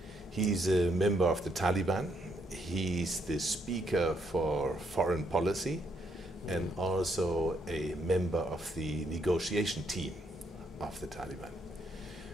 He's a member of the Taliban. He's the speaker for foreign policy and also a member of the negotiation team of the Taliban.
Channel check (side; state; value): both; normal; correlation 0.74